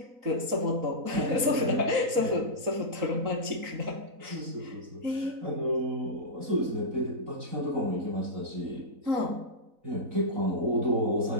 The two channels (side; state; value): left; late; 3.9 ms